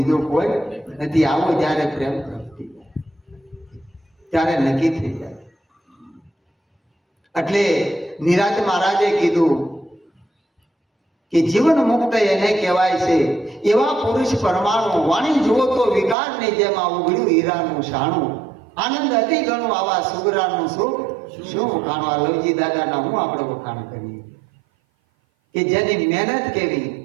કોઈ નથી. આવો જ્યારે પ્રેમ પ્રગતિ ત્યારે નક્કી થઈ જાય. એટલે નિરાંત મહારાજે કીધું કે જીવન મુક્ત એને કહેવાય છે. એવા પુરુષ પરમાણુ, વાણી જુઓ તો વિકારની જેમ આ ઉઘડ્યું હીરાનું શાણું. આનંદ અતિ ઘણું આવા સુગરાનું સુખ શું વખાણું. આ લવજી દાદાના હું આપણે વખાણ કરીએ કે જેની મહેનત કેવી.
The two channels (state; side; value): drops out; left; at 16.2 s